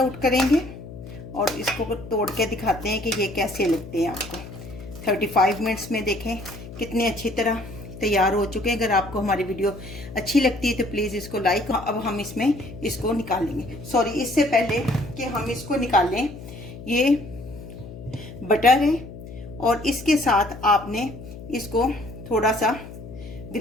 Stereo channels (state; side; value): noise; left; hum, 13 dB below the sound